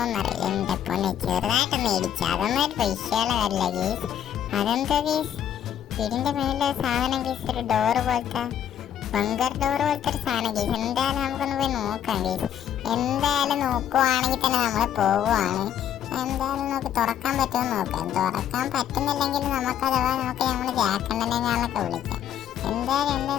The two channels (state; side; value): quieter; right; 9.9 dB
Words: എന്റെ പൊന്നെ ചെറുതായിട്ടൊന്ന് ഇടിച്ചു. അതൊന്നും ഒരു വിഷയമുള്ള കാര്യമില്ല ഗീസ്. അതെന്താ ഗീസ്? വീടിന്റെ മേലെ സാധനം ഗീസ്, ഒരു ഡോറ് പോലത്തെ ബങ്കർ ഡോർ പോലത്തെ ഒരു സാധനം ഗീസ്. എന്തായാലും നമുക്കൊന്ന് പോയി നോക്കാം ഗീസ്. എന്തായാലും നോക്കുവാണെങ്കിൽ തന്നെ നമ്മൾ പോവുകയാണ്. എന്തായാലും നമുക്ക് തുറക്കാൻ പറ്റുമെന്ന് നോക്കാം. തുറക്കാൻ പറ്റുന്നില്ലെങ്കിൽ നമുക്ക് അഥവാ നമുക്ക് നമ്മൾ ജാക്കണ്ണനെ ഞാനൊക്കെ വിളിക്കാം.